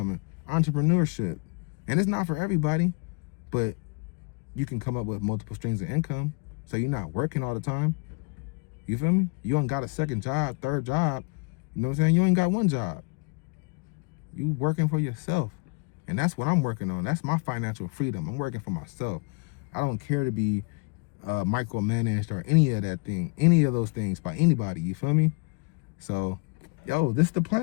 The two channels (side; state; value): right; quieter; 31.4 dB